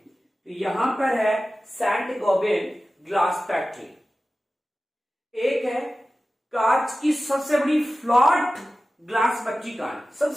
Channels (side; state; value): both; normal; correlation 0.95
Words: यहां पर है सैंड गोबिन ग्लास फैक्ट्री। एक है कांच की सबसे बड़ी फ्लॉट ग्लास फैक्ट्री कहाँ है,